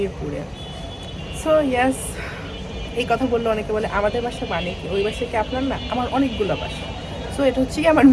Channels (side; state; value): both; identical; correlation 1.00